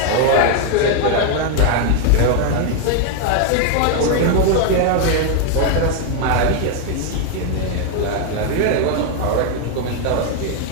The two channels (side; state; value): both; different; correlation 0.00